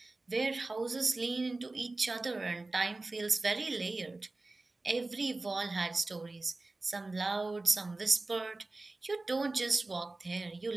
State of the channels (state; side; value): quieter; left; 3.1 dB